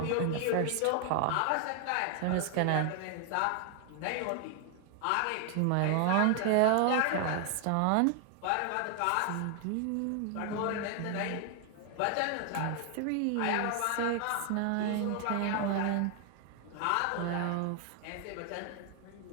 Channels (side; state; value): both; different; correlation 0.00